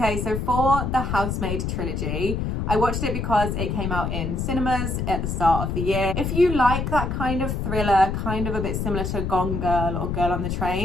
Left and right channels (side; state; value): left; noise; rumble, 2 dB below the sound